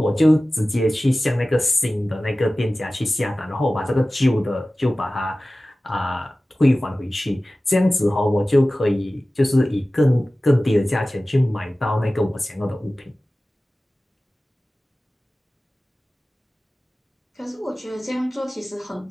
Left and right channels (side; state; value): both; normal; correlation 0.96